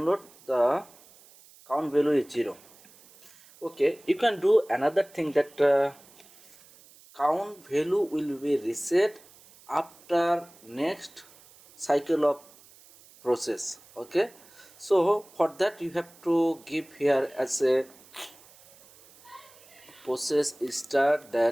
the count value is 0. Okay, you can do another thing, that count value will be reset after next cycle of process. Okay, so for that you have to give here as a process start,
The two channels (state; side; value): noise; right; hiss, 25 dB below the sound